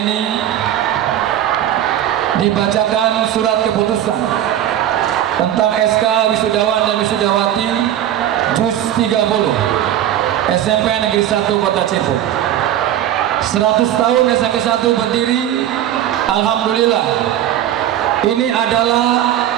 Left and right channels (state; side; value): quieter; left; 11.5 dB